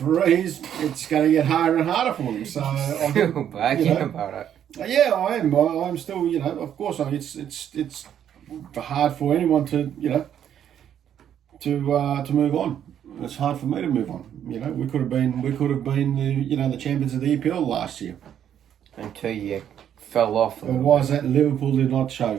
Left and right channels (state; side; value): quieter; left; 9.7 dB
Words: It's going to get harder and harder for them. So I think, about it. yeah, I am. I'm still, you know, of course. I mean, it's hard for anyone to, you know, to move on. It's hard for me to move on. You know, we could have been the champions of the EPL last year. Until you fell off. And why is that Liverpool did not